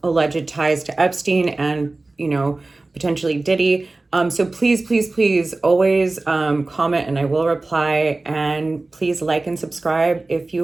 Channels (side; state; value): left; quieter; 3.2 dB